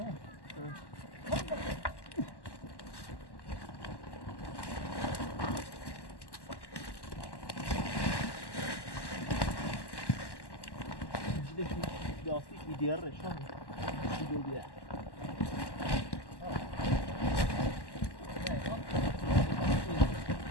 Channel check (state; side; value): late; right; 1.1 ms